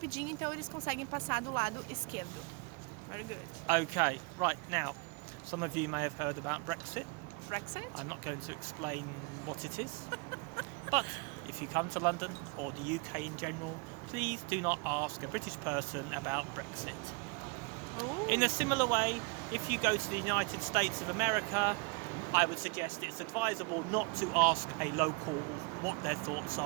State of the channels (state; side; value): quieter; left; 30.9 dB